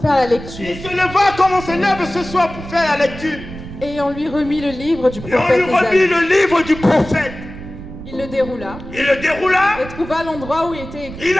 faire la lecture, Il se leva comme on se lève ce soir pour faire la lecture. et on lui remit le livre du Et on prophète lui remit Ésaïe. le livre du prophète. Il le déroula Il le déroula. et trouva l'endroit où il était écrit. Il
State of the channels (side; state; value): right; noise; rumble, 13 dB below the sound